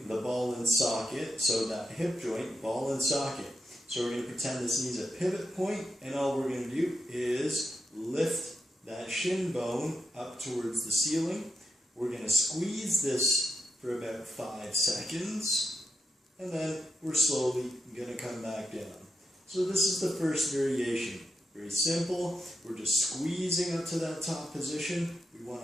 the ball and socket, so that hip joint, ball and socket. So we're going to pretend this knee's a pivot point, and all we're going to do is lift that shin bone up towards the ceiling. We're going to squeeze this for about 5 seconds, and then we're slowly going to come back down. So this is the first variation. Very simple. We're just squeezing up to that top position. We want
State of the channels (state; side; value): normal; both; correlation 0.85